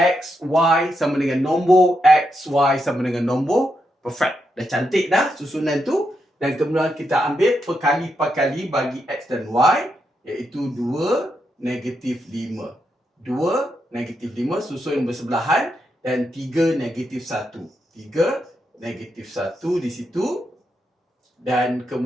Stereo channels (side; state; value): both; normal; correlation 0.83